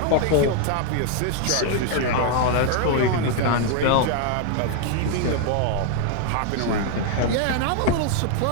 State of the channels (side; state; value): both; different; correlation 0.00